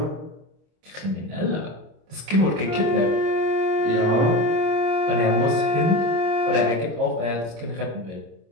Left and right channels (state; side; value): late; left; 26 ms